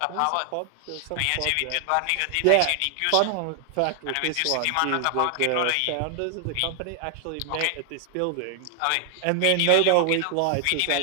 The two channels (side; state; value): both; different; correlation 0.00